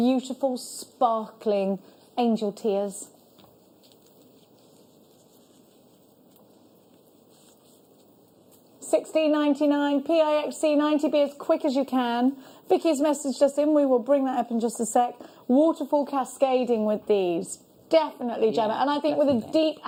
sparkling angel tears. $16.99, PIXC90, be as quick as you can. Vicky's messaged us in, we will bring that up in just a sec. Waterfall cascading with these. Definitely, Gemma. And I think with a deep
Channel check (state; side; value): identical; both; correlation 1.00